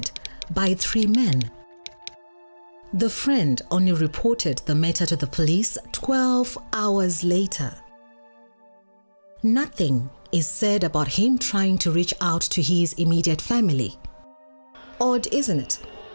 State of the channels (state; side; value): inverted; both; correlation -1.00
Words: by 3 men. The friend only reported the matter to the police 12 hours later. Nothing is said about him trying to reach out to his immediate family. Odd, isn't it?